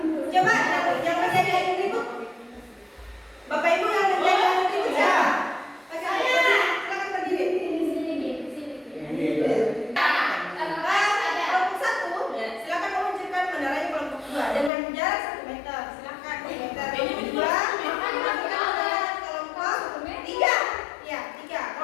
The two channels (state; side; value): drops out; right; at 14.7 s